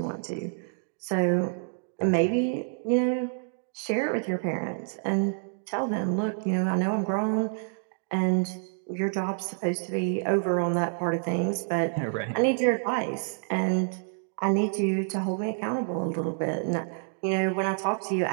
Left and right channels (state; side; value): silent; left; digital silence